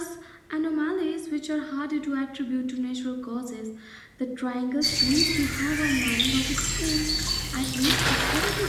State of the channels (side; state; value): both; identical; correlation 1.00